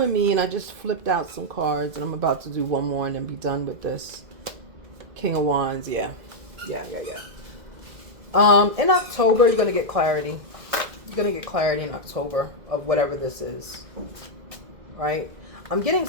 me, and I just flipped out some cards, and I'm about to do one more and then be done with this. King of Wands, yeah. Yeah. In October, you're going to get clarity. You're going to get clarity in October of whatever this is. Right? I'm getting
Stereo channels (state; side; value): late; left; 2.0 ms